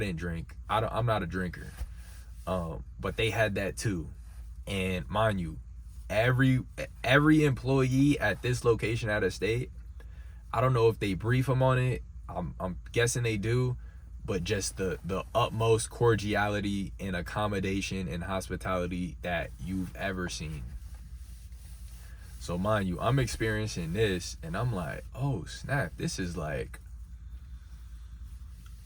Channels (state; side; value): identical; both; correlation 1.00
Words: drink. I'm not a drinker. But they had that too. And mind you, every employee at this location out of state, I don't know if they brief them on it. I'm guessing they do, but just the utmost cordiality and accommodation and hospitality that you've ever seen. So mind you, I'm experiencing this and I'm like, oh snap, this is I